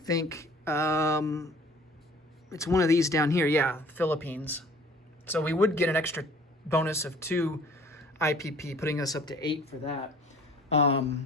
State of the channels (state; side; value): normal; both; correlation 0.51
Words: it's one of these down here. Yeah, Philippines. So we would get an extra bonus of 2 IPP, putting us up to 8 for that.